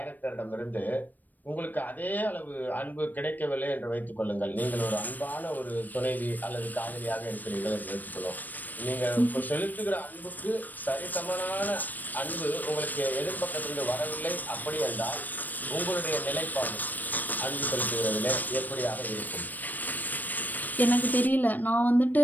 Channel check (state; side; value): late; right; 0.086 ms